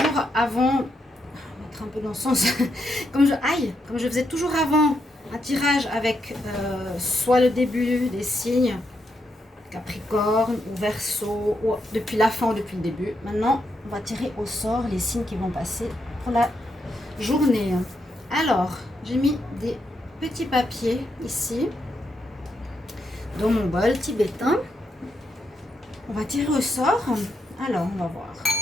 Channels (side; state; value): both; normal; correlation 0.81